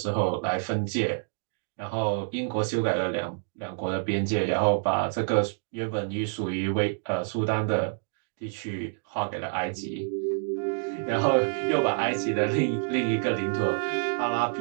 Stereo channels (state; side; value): silent; left; digital silence